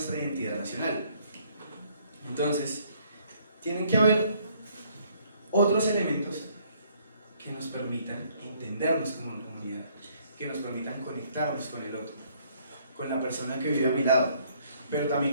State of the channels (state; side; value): inverted; both; correlation -0.64